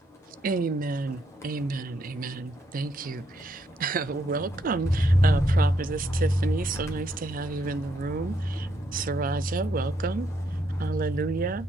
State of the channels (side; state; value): both; normal; correlation 0.75